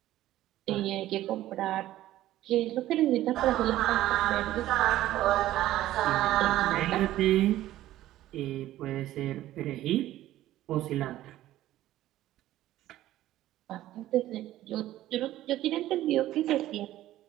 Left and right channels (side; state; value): left; quieter; 14.3 dB